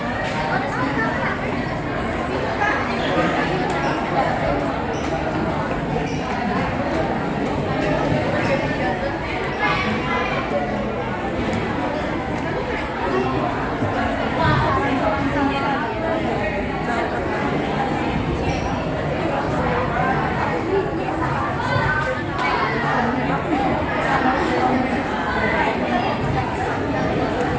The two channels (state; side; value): identical; both; correlation 1.00